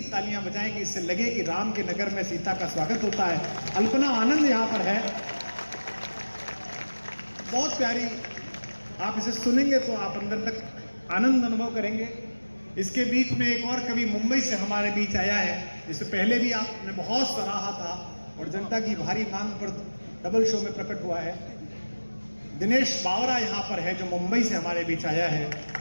तालियां बजाएंगे, इससे लगे कि राम के नगर में सीता का स्वागत होता है। अल्पना आनंद यहाँ पर है, बहुत प्यारी। आप इसे सुनेंगे तो आप अंदर तक आनंद अनुभव करेंगे। इसके बीच में एक और कवि मुंबई से हमारे बीच आया है, जिसे पहले भी आपने बहुत सराहा था और जनता की भारी मांग पर डबल शो में प्रकट हुआ है। दिनेश बावरा यहाँ पर है, जो मुंबई से हमारे बीच आया है।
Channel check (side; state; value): both; inverted; correlation -1.00